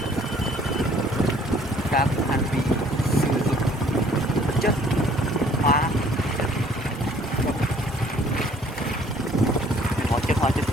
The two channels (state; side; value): normal; both; correlation 0.58